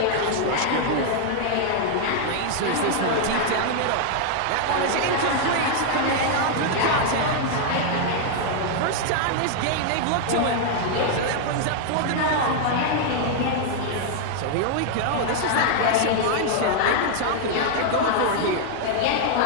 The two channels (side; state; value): both; different; correlation 0.00